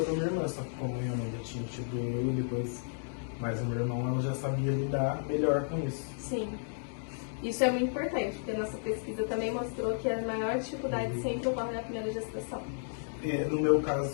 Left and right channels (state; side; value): silent; right; digital silence